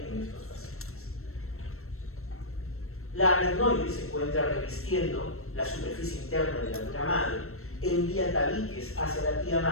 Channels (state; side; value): late; right; 0.63 ms